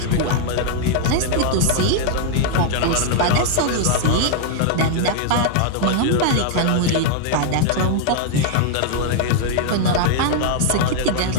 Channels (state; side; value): different; both; correlation 0.00